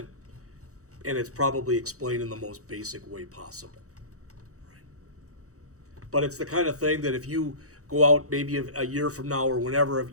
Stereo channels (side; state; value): left; late; 0.65 ms